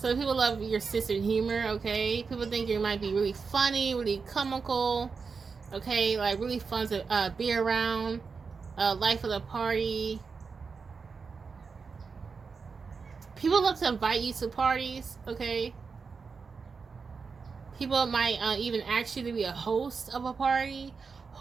people love your sense of humor, okay? People think you might be really funny, really comical, okay? Like really fun to be around. Life of the party. People love to invite you to parties, okay? People might even ask you to be a host of a party,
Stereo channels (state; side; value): quieter; left; 5.1 dB